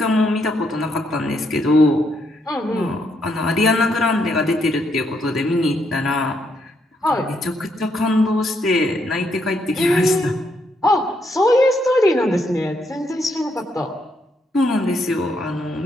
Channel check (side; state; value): both; normal; correlation 0.76